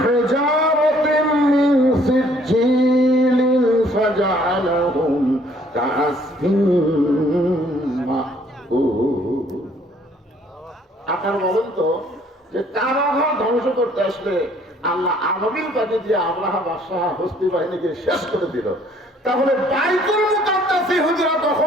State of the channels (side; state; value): both; normal; correlation 0.61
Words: من سجيل فجعلهم كعصف مأكول। আপনারা বলেন তো যে কাবাঘর ধ্বংস করতে আসলে আল্লাহ আবাবিল পাঠিয়ে দিয়ে আব্রাহা বাদশাহ হস্তি বাহিনীকে শেষ করে দিল, তাহলে বাইতুল মুকাদ্দাস ইহুদিরা